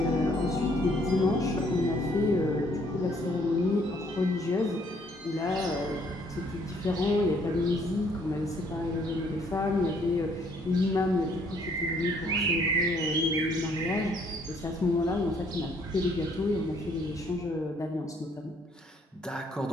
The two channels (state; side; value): normal; both; correlation 0.64